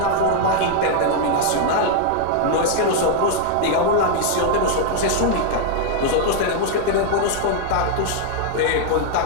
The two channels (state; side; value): different; both; correlation 0.00